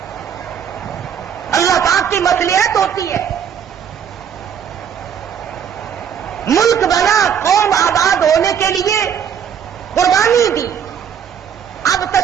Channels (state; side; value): quieter; left; 8.1 dB